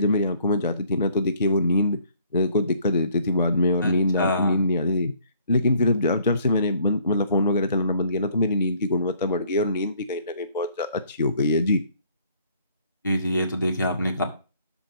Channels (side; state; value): both; inverted; correlation -0.61